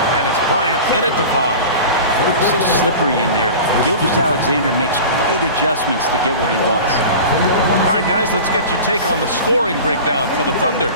And it's Bryant in at the 5. So slippery in there. Gilgeous-Alexander makes great adjustments to get what he wants. All right, guys, let's get your take on the scoring breakdown for the Thunder.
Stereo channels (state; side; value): inverted; both; correlation -0.35